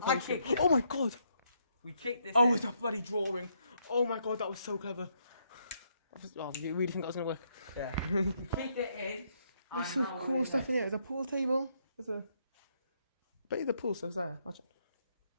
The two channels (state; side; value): inverted; both; correlation -0.74